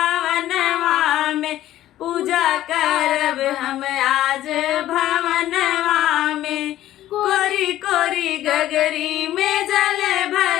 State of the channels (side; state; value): right; quieter; 13.6 dB